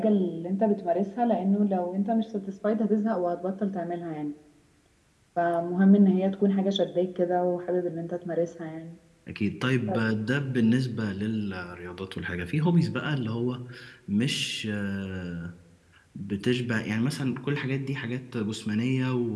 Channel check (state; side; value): identical; both; correlation 1.00